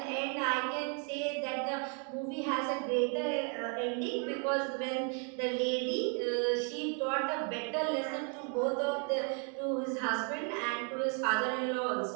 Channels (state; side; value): quieter; left; 39.5 dB